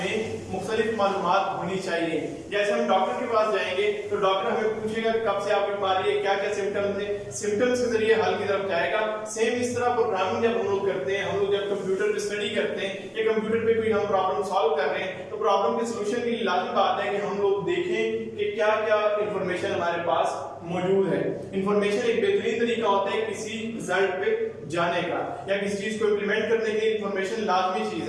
मुख्तलिफ मालूमात होनी चाहिए। जैसे हम डॉक्टर के पास जाएंगे तो डॉक्टर हमें पूछेगा कब से आपकी बीमारी है, क्या क्या सिम्टम्स है, सिम्टम्स के जरिए हल की तरफ जाएगा। सेम इस तरह प्रोग्रामिंग जब हम लोग करते हैं, हम लोग जब कंप्यूटर पे स्टडी करते हैं या कंप्यूटर पे कोई हम प्रॉब्लम सॉल्व कर रहे हैं तो प्रॉब्लम के सोल्यूशन के लिए लाजमी बात है कि हम लोग देखें कि क्या क्या इंफॉर्मेशन हमारे पास मौजूद है। इंफॉर्मेशन एक बेहतरीन तरीका होता है किसी रिजल्ट पे जाने का या किसी चीज को इंप्लीमेंट करने के लिए इंफॉर्मेशन लाजमी चीज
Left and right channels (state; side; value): identical; both; correlation 1.00